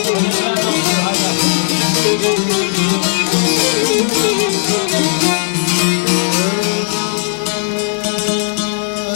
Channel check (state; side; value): silent; right; digital silence